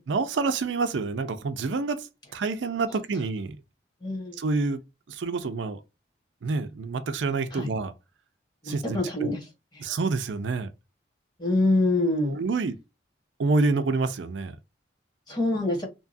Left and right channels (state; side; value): normal; both; correlation 0.51